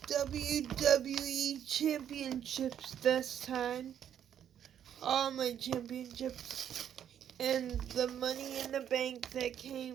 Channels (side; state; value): left; quieter; 9.5 dB